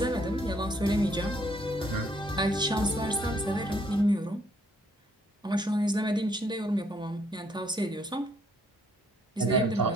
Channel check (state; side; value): normal; both; correlation 0.68